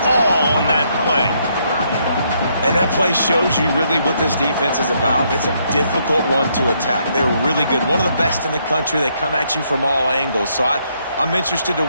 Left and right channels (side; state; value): both; inverted; correlation -0.73